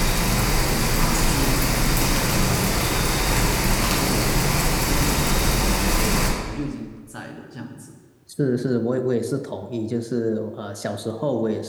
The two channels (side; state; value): both; identical; correlation 1.00